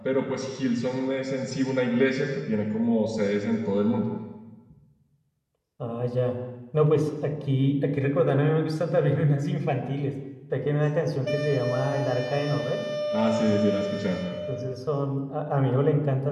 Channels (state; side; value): identical; both; correlation 1.00